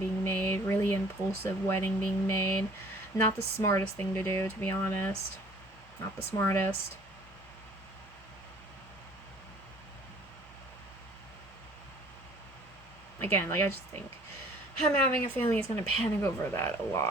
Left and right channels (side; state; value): both; normal; correlation 0.53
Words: made, really impulsive wedding being made. Not the smartest thing to do, to be honest. Not the smartest. Again, like, I just think him having a family is going to panic over that a